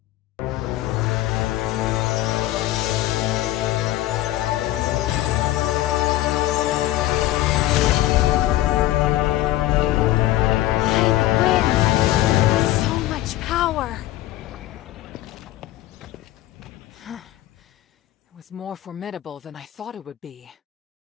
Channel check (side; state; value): right; quieter; 15.1 dB